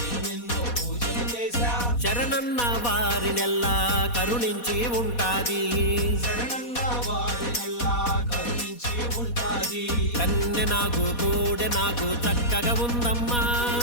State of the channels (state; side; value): late; right; 4.2 ms